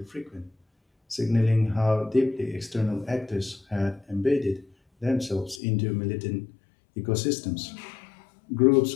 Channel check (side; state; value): right; drops out; at 5.6 s